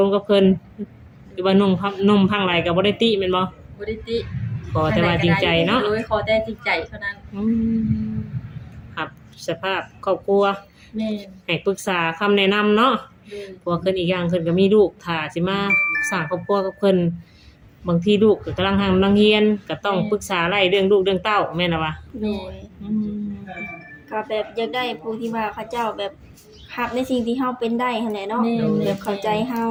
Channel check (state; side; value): identical; both; correlation 1.00